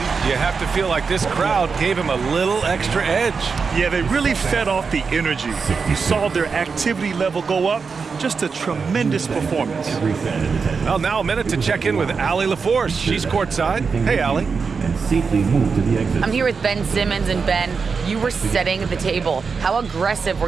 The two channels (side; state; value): left; quieter; 5.2 dB